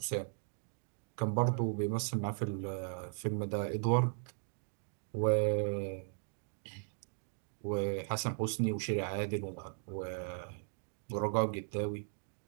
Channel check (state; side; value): silent; left; 53 dB below the other